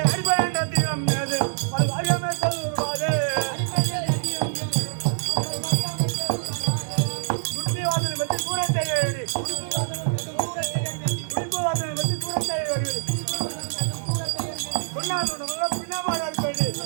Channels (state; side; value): silent; left; 56 dB below the other